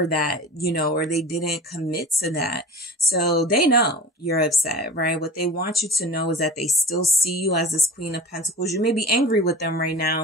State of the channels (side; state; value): both; normal; correlation 0.36